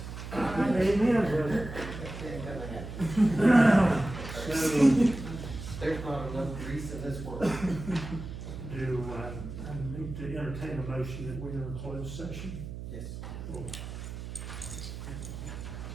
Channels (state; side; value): noise; right; hum, 9 dB below the sound